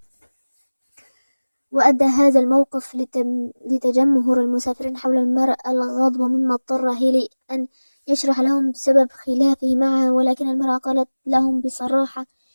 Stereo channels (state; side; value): inverted; both; correlation -1.00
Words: وأدى هذا الموقف لتجمهر المسافرين حول المرأة الغاضبة، مما اضطر هيلي أن يشرح لهم سبب خلافه معها، ولكن المرأة قالت لهم بصراحة: